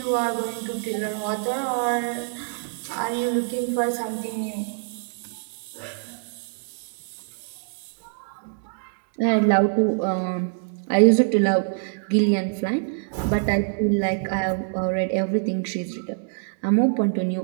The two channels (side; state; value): left; silent; digital silence